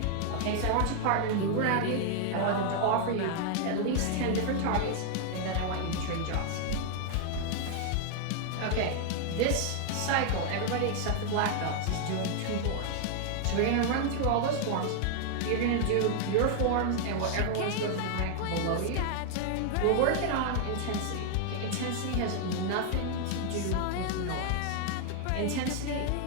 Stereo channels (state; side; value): different; both; correlation 0.00